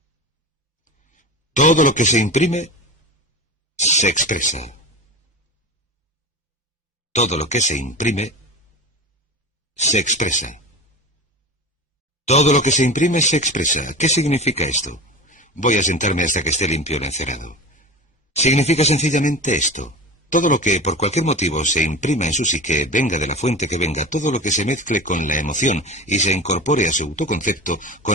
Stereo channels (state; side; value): normal; both; correlation 0.31